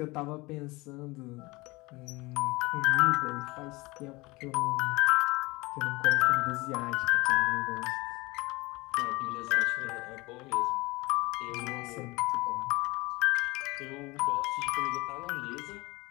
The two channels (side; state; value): right; quieter; 23.0 dB